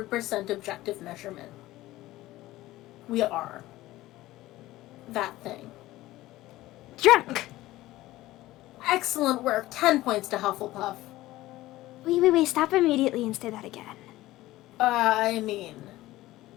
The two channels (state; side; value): quieter; right; 16.9 dB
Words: objective measurement. We are. That thing. Drunk! Excellent work. 10 points to Hufflepuff. Wait, stop immediately and say that again. I mean,